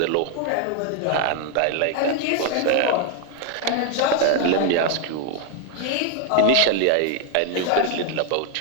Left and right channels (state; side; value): different; both; correlation 0.00